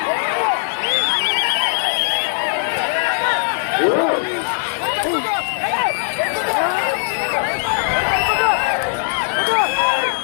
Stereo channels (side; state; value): right; silent; digital silence